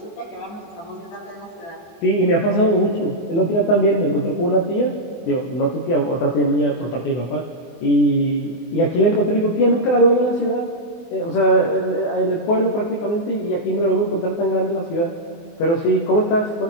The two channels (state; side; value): late; right; 24 ms